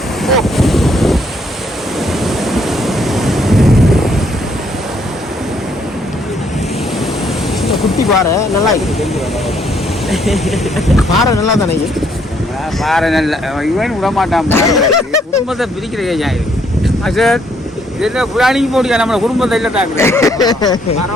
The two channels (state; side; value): normal; both; correlation 0.69